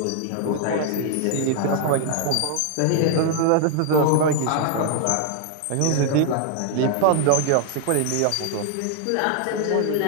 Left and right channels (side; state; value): both; different; correlation 0.00